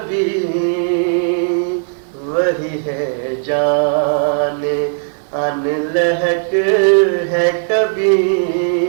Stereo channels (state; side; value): silent; left; 57 dB below the other